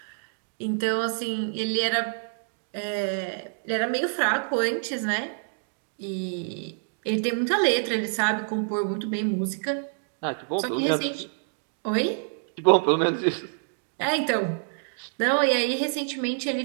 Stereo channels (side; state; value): left; silent; digital silence